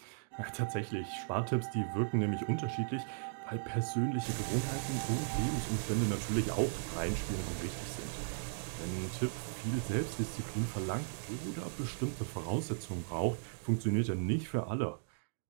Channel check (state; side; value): silent; left; digital silence